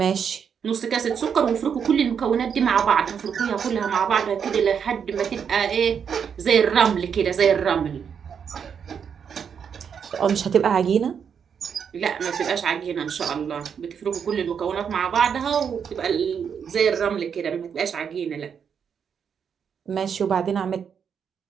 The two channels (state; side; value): quieter; left; 7.2 dB